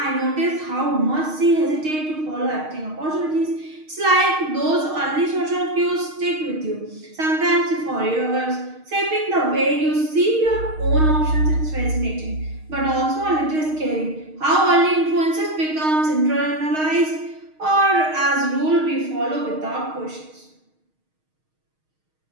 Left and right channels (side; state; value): left; late; 6.4 ms